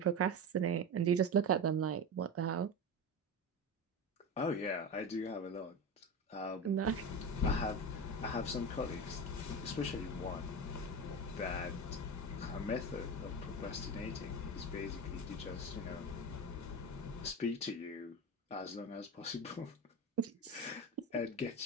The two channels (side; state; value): both; normal; correlation 0.23